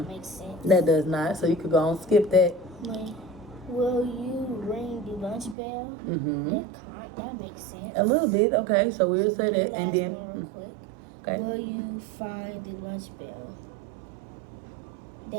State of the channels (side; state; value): left; drops out; at 5.6 s